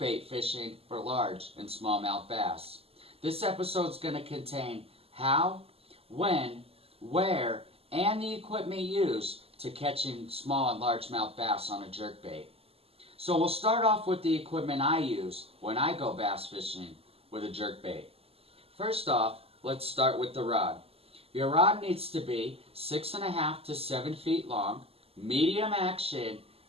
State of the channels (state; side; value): late; left; 0.28 ms